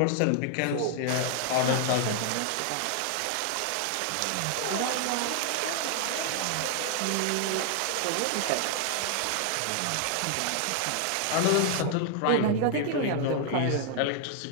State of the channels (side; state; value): both; different; correlation 0.00